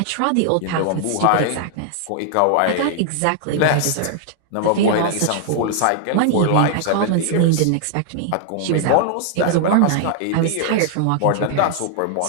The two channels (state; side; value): different; both; correlation 0.00